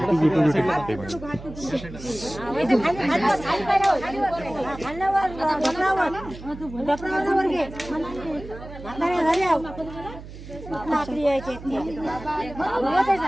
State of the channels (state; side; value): noise; right; hum, 14 dB below the sound